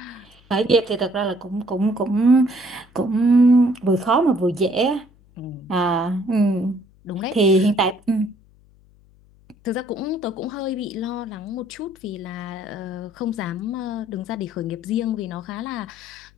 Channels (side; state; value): left; noise; hum, 29 dB below the sound